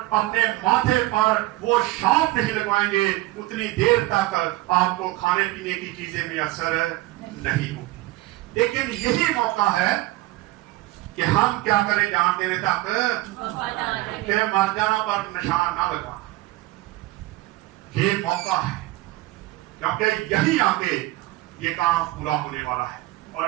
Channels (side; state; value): left; quieter; 18.5 dB